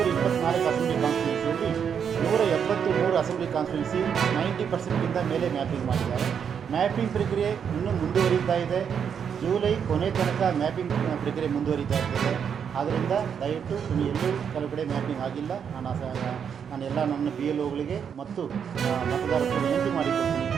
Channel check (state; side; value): quieter; left; 7.5 dB